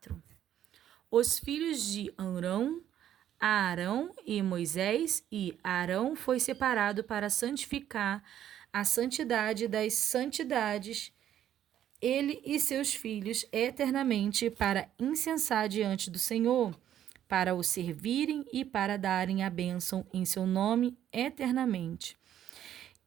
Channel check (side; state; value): left; quieter; 10.9 dB